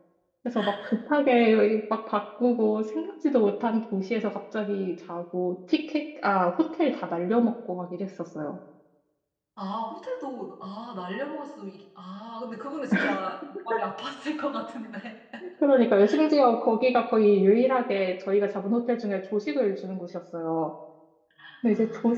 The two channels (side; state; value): both; identical; correlation 1.00